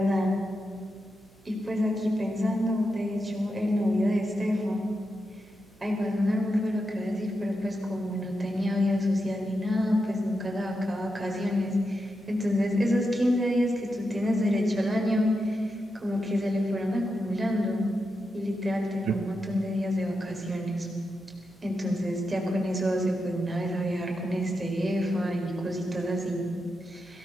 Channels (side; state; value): right; noise; hum, 29 dB below the sound